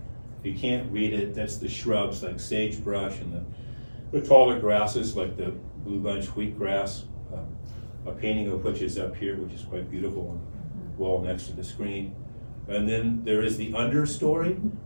If you can't read it, that's the shrubs like sagebrush and the taller grasses like the blue bunch wheatgrass, a painting of which is up here, which is quite beautiful on the wall next to the screen. And then there is the understory,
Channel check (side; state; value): both; inverted; correlation -1.00